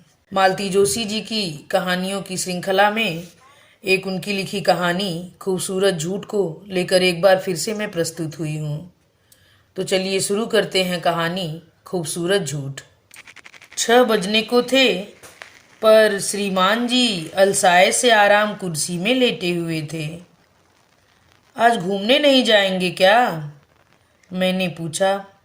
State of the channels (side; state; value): both; identical; correlation 1.00